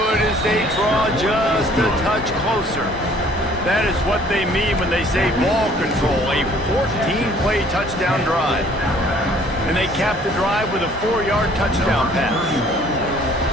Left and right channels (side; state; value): both; normal; correlation 0.56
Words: as they draw just a touch closer. That is what they mean when they say ball control, a 14-play touchdown drive. And they cap the drive with a 4-yard touchdown pass.